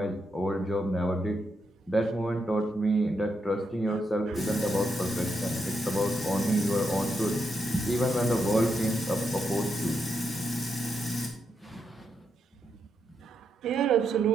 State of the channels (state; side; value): normal; both; correlation 0.82